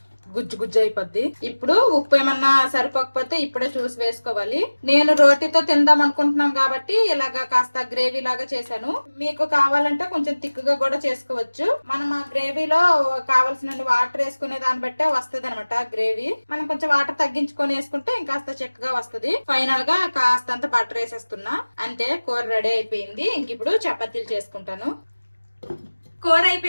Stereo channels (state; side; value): inverted; both; correlation -1.00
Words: గుజ్జు అయిపోద్ది. ఇప్పుడు ఉప్పు ఏమన్నా సరిపోకపోతే ఇప్పుడే చూసి వేసుకోవాలి. నేను రోటీతో తిందాం అనుకుంటున్నాం కాబట్టి ఇలాగా కాస్త గ్రేవీ లాగా చేశాను. మీకు కావాలంటే కొంచెం తిక్కుగా కూడా చేసుకోవచ్చు. మనం ఆ గ్రేవీలో కావాల్సిన వాటర్ వేసుకునే దాన్ని బట్టే వస్తుంది అనమాట గ్రేవీ. మనం కొంచెం వాటర్ తగ్గించుకొని వేసుకుంటే ఇంకాస్త చిక్కగా వస్తుంది. ఫైనల్ గా కాస్తంత బటర్ వేసేస్తున్నా. అంతే, కూర రెడీ అయిపోయింది. ఇంక ఇప్పుడు చపాతీలు చేసుకుంటాను. కూర